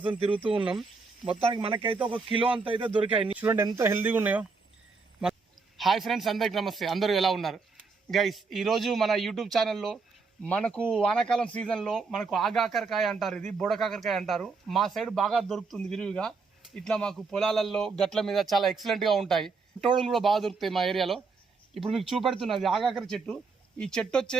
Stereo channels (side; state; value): left; quieter; 4.5 dB